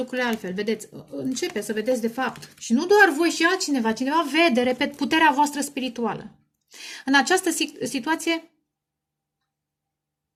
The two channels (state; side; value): identical; both; correlation 1.00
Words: altfel, vedeți, începe să vedeți de fapt. Și nu doar voi și altcineva, cineva vede, repet, puterea voastră spirituală. În această situație,